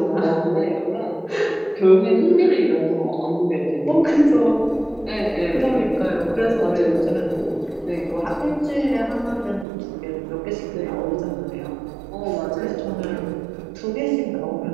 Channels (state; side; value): drops out; left; at 9.7 s